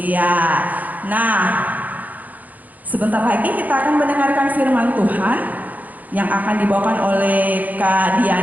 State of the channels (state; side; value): late; left; 0.080 ms